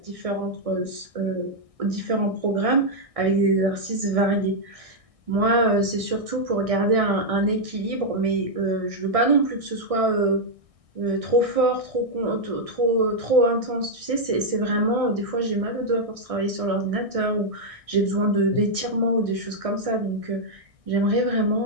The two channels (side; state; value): left; late; 1.6 ms